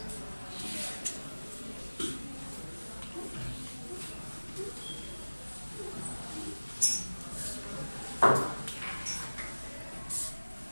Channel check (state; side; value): inverted; both; correlation -1.00